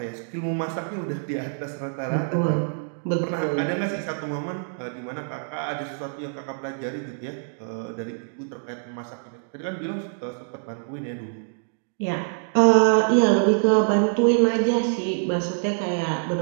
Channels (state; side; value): silent; left; digital silence